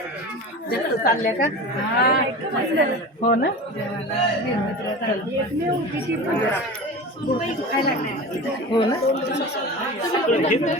जास्त चालल्या का? हो ना. हो ना.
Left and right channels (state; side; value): normal; both; correlation 0.32